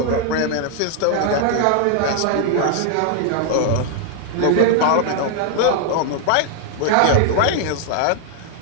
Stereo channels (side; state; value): both; different; correlation 0.00